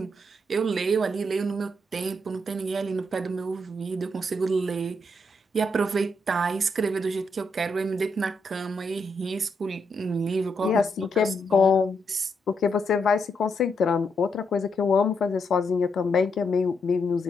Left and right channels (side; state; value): both; normal; correlation 0.79